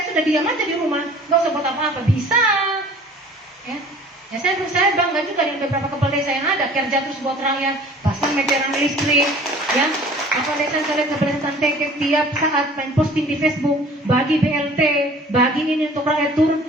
sudah diam aja di rumah, nggak usah buat apa-apa, bisa, ya. Ya saya bangga juga dengan beberapa kepala desa yang ada, kerja terus buat rakyat, pasang meteran listrik, ya. Kepala desa saya lihat kepala desa Teke tiap saat main posting di Facebook, bagi BLT, bagi ini untuk rakyat turun,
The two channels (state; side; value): normal; both; correlation 0.49